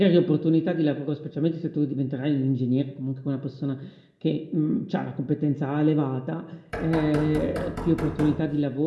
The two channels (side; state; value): both; identical; correlation 1.00